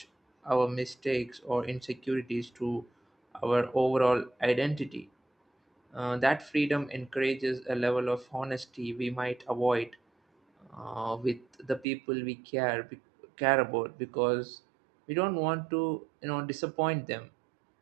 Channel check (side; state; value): left; drops out; at 11.9 s